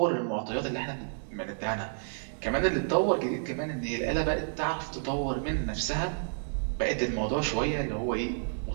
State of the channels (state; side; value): silent; left; 58 dB below the other